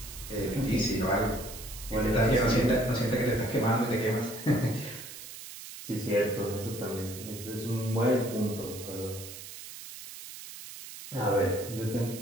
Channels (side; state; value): right; noise; hiss, 12 dB below the sound